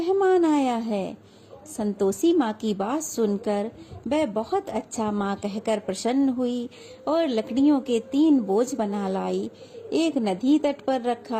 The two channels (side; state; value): both; identical; correlation 1.00